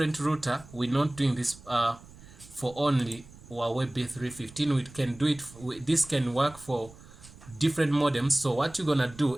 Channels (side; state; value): right; noise; rumble, 21 dB below the sound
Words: router, we're not doing this for only Huawei B315. We can do it, this can work for different modems. So what you're gonna do,